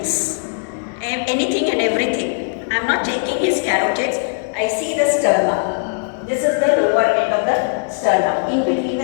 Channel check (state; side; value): silent; right; 64 dB below the other